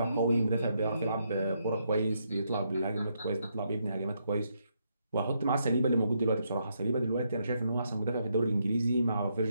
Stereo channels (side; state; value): both; inverted; correlation -0.78